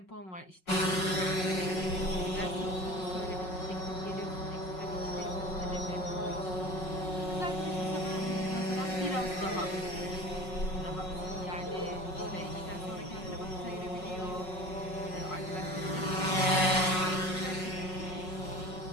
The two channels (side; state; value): right; late; 5.4 ms